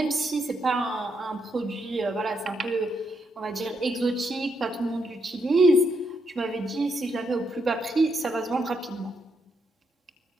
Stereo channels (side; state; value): both; normal; correlation 0.79